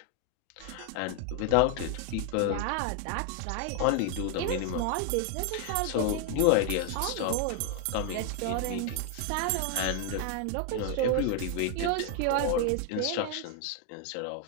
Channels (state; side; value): different; both; correlation 0.00